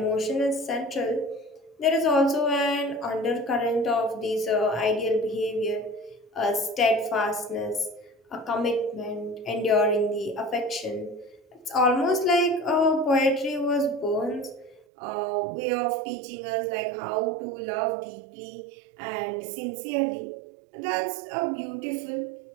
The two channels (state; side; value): drops out; left; at 14.8 s